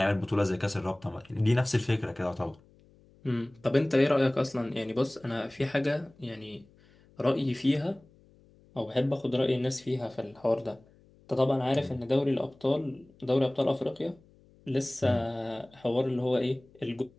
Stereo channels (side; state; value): left; noise; hum, 28 dB below the sound